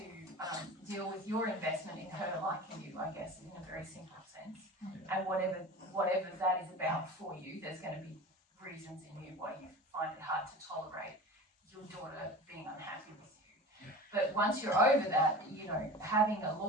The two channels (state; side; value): normal; both; correlation 0.34